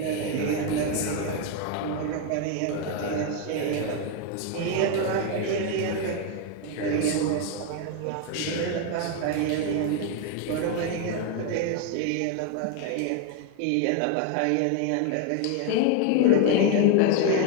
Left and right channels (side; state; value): both; different; correlation 0.01